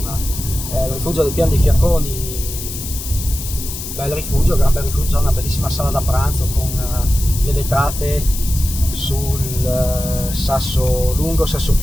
Il rifugio del Pian dei Fiacconi, bel rifugio, gran bel rifugio, una bellissima sala da pranzo con le vetrate sul sasso lungo, sasso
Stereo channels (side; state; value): left; noise; hiss, 8 dB below the sound